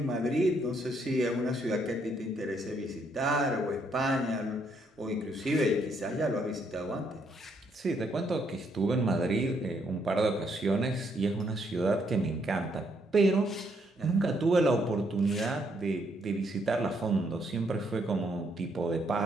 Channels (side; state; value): both; normal; correlation 0.73